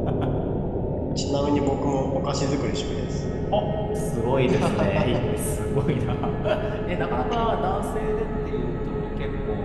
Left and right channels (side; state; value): both; identical; correlation 1.00